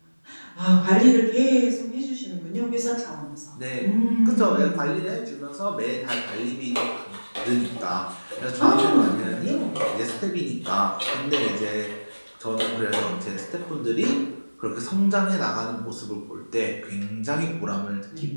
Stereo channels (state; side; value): inverted; both; correlation -1.00